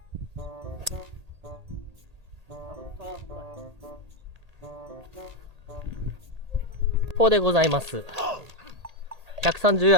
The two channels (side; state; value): left; late; 1.8 ms